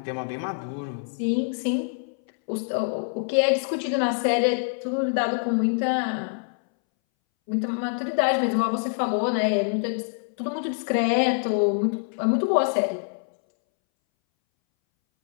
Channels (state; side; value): silent; right; 61 dB below the other